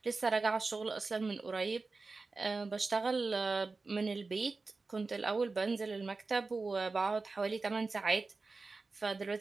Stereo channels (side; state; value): left; quieter; 3.9 dB